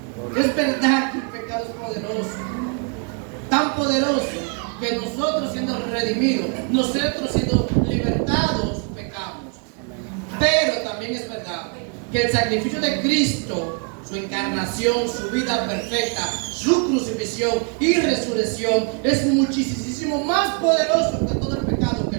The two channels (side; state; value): left; quieter; 39.5 dB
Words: Es verdad que el pecado es poderoso, tan poderoso que nosotros siendo redimidos, nosotros siendo libertados, pecamos. Pero también es verdad que el sacrificio de Cristo, su encarnación, su vida perfecta, su crucifixión y resurrección es muchísimo más poderoso que todo el pecado que